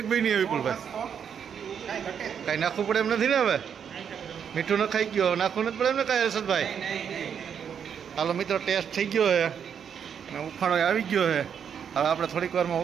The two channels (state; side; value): quieter; left; 7.8 dB